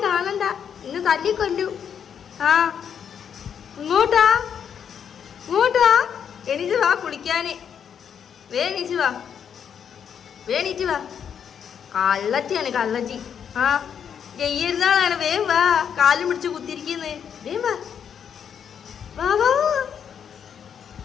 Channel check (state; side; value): quieter; right; 8.0 dB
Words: കാണണ്ട, ഇന്ന് തല്ലിക്കൊല്ലു. ഇങ്ങോട്ടാ എണീച്ച് വാ കുളിക്കാന്. വേണീച്ച് വാ. കള്ളറ്റിയാണ് കള്ളറ്റി. ജയ്യരുന്നാളാണ്. വേം വാ, കാലും പിടിച്ച് കുത്തിരിക്കുന്നു. വേം വാ.